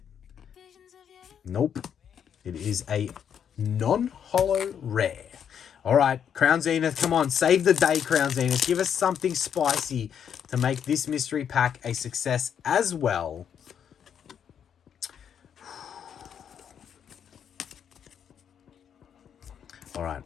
Nope. It is a non-holo rare. All right, Crown Zenith, come on. Save the day, Crown Zenith. Give us something spicy to make this mystery pack a success as well. All right.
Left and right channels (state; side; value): quieter; right; 8.3 dB